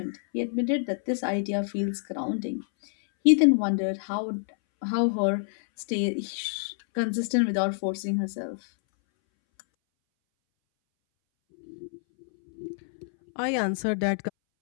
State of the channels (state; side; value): silent; right; 60 dB below the other